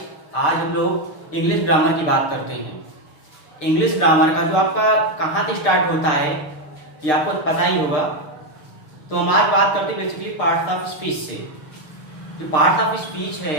आज हम लोग इंग्लिश ग्रामर की बात करते हैं। इंग्लिश ग्रामर का जो आपका कहाँ से स्टार्ट होता है ये आपको पता ही होगा। तो हम आज बात करते हैं बेसिकली पार्ट्स ऑफ स्पीच से। जो पार्ट्स ऑफ स्पीच है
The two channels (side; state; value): right; late; 6.6 ms